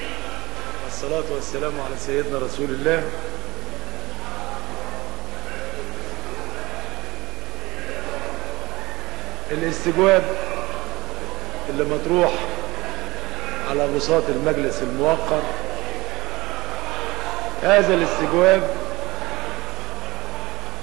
والصلاة والسلام على سيدنا رسول الله. الاستجواب اللي مطروح على بساط المجلس الموقر، هذا الاستجواب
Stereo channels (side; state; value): left; quieter; 20.8 dB